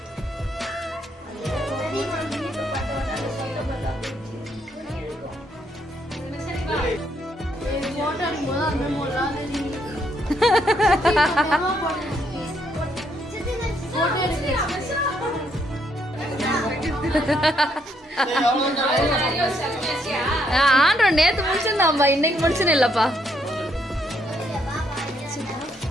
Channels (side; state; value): both; normal; correlation 0.73